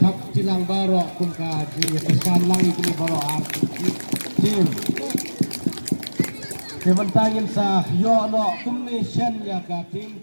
tilang barok pun kaji kesan lang ini barok arti tim sementara sa yo no kumni shen ya ka tim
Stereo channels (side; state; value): both; inverted; correlation -1.00